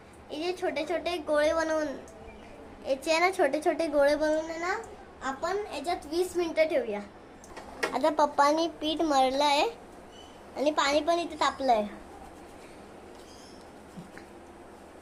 याचे छोटे छोटे गोळे बनवून याचे आहे ना छोटे छोटे गोळे बनवून आहे ना आपण याच्यात 20 मिनिटं ठेवूया. आता पप्पानी पीठ मळलंय आणि पाणी पण इथे तापलंय.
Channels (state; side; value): identical; both; correlation 1.00